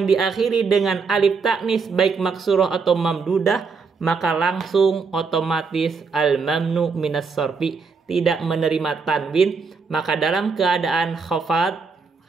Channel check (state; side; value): quieter; left; 5.0 dB